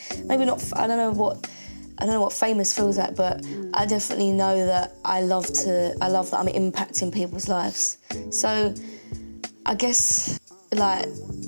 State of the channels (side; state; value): both; inverted; correlation -1.00